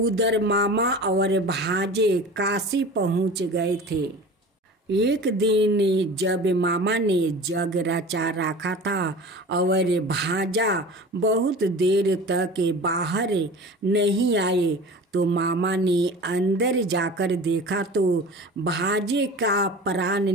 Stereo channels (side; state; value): both; normal; correlation 0.37